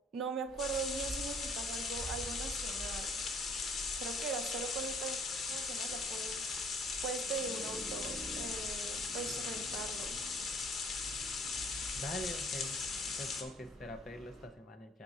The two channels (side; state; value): both; normal; correlation 0.59